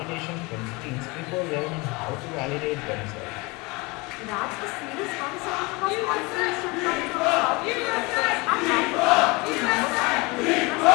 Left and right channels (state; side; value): quieter; right; 25.6 dB